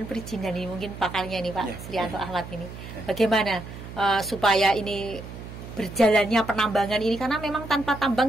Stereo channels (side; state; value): right; noise; hum, 12 dB below the sound